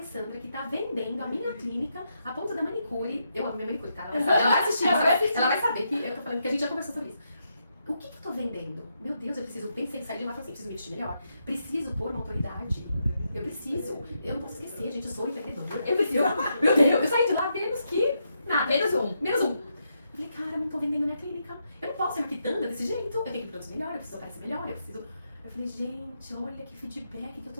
que tá vendendo a minha clínica a ponto da manicure? Eu amo minha manicure, tá? Ela vai assistir, ela vai saber que eu tô falando, porque a gente já conversou sobre isso. O que eu tô vendendo? Meu Deus, eu preciso, pensei em sair de lá e falei assim, preciso me vestir melhor. Preciso pôr uma autoridade. Eu não posso esquecer, gente, eu sou empreendedora. Meu Deus, eu saí de lá menos que nada. Menos um. Eu falei, cara, não tô vendendo a minha clínica. Eu não posso ser uma quitanda desse jeito. Eu tenho que produzir melhor, eu preciso aparecer melhor, Eu falei, gente, olha que feedback que eu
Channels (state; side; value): inverted; both; correlation -0.81